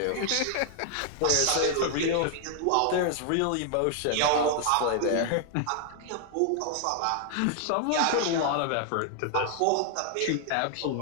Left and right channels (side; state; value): both; different; correlation 0.00